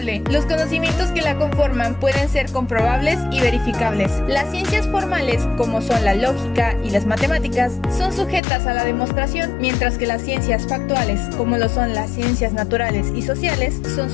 Los conocimientos que la conforman pueden ser comprobables y verificables. Las ciencias formales, como son la lógica y las matemáticas, son sujetas a la demostración, mientras que las ciencias factuales, como lo son las ciencias naturales y sociales, son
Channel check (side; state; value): right; drops out; at 8.4 s